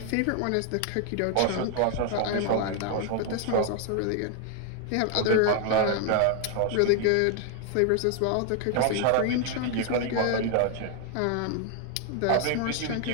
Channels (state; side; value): different; both; correlation 0.00